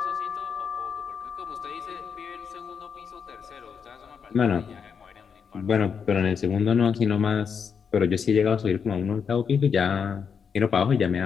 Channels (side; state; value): right; quieter; 6.6 dB